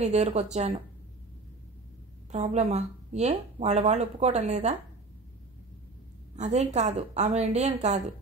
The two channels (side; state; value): left; quieter; 3.5 dB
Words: దగ్గరకు వచ్చాను. ప్రాబ్లమా? ఏ, వాళ్ళు ఒప్పుకోవటం లేదా? అదేం కాదు, ఆమె ఇండియన్ కాదు.